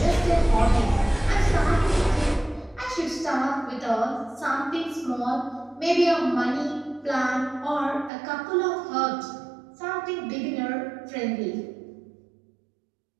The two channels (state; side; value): drops out; left; at 8.1 s